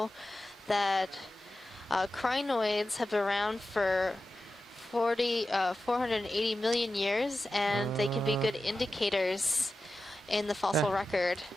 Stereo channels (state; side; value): normal; both; correlation 0.93